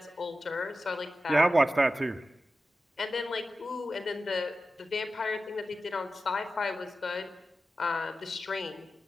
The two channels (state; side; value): normal; both; correlation 0.93